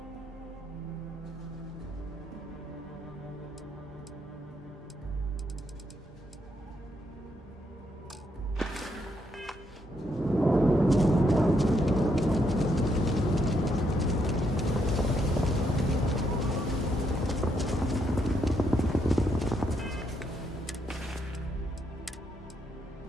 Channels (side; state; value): both; normal; correlation 0.76